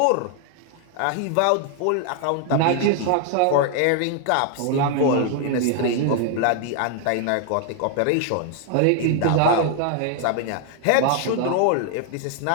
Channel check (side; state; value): both; different; correlation 0.00